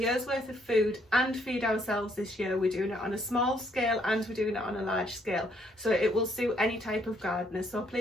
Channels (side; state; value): both; normal; correlation 0.69